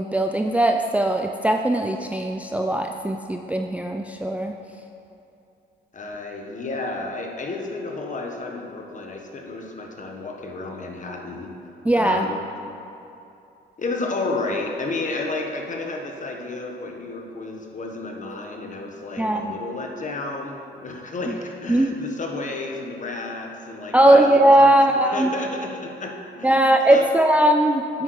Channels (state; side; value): normal; both; correlation 0.73